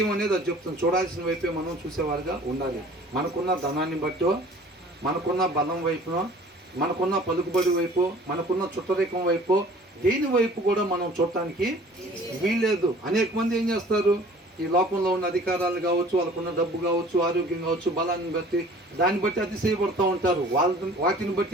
అనేది అది చెప్తుంది, చూడాల్సిన వైపే మనం చూసేవారుగా ఉండాలి. మనకున్న ధనాన్ని బట్టో, మనకున్న బలం వైపునో, మనకున్న పలుకుబడి వైపు, మనకున్న చుట్టరికం వైపు, దేని వైపు కూడా మనం చూడటానికి వీల్లేదు. అనేక మంది ఏం చేస్తారు, ఈ లోకంలో ఉన్న అధికారాలు కావచ్చు, వాళ్ళకున్న డబ్బు కావచ్చు, ఆరోగ్యం కావచ్చు, బలాన్ని బట్టి దాన్ని బట్టి అతిశయపడుతూ ఉంటారు. వాటిని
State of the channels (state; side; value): normal; both; correlation 0.49